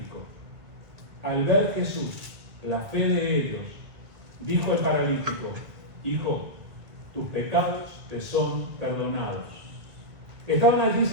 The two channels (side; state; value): left; late; 2.1 ms